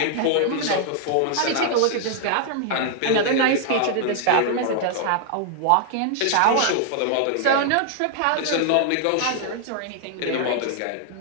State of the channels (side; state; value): both; different; correlation 0.00